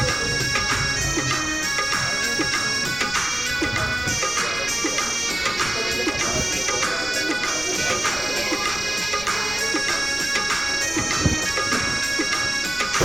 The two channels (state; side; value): noise; left; rumble, 15 dB below the sound